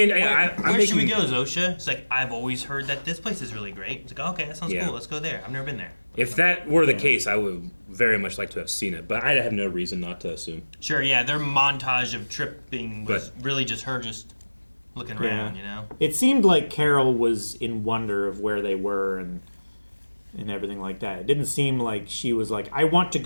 where should we go, Zosia? It's like, I've always heard that this place is really great. It's like, okay, that sounds cool, let's go there. I've never been there. If that were the case, I would very much like to have seen it, but I have no reason not to assume. Sure, yeah, their montage of tripping was really just her just looking around, you know? It seemed like Carol was in wonder of where they were and everything like that. It didn't seem like she was like, I want to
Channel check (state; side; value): inverted; both; correlation -1.00